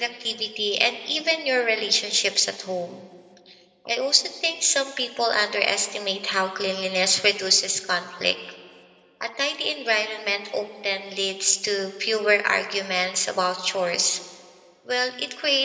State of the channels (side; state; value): both; identical; correlation 1.00